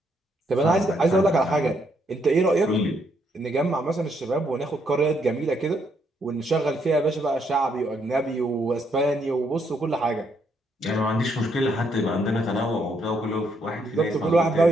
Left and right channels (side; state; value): both; normal; correlation 0.74